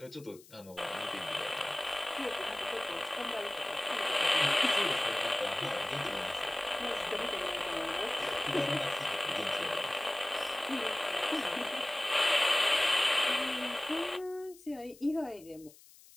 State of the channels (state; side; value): noise; left; hiss, 23 dB below the sound